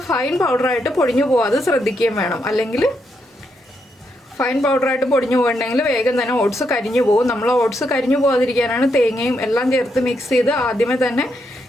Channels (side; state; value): both; normal; correlation 0.80